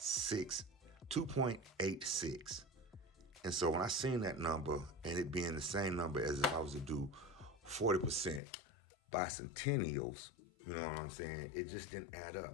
And so when I seen that number and it being the same number as if I was to do 40% bicentennials, you know what I'm saying? It just didn't add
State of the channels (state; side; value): drops out; right; at 8.4 s